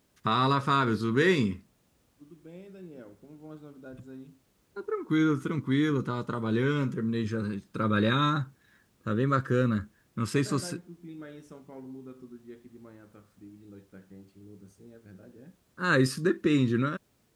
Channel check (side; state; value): both; identical; correlation 1.00